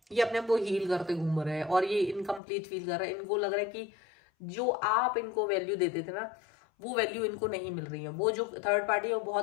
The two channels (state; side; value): drops out; right; at 2.4 s